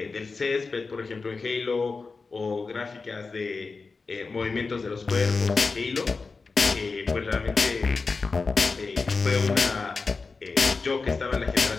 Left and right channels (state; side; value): quieter; right; 4.3 dB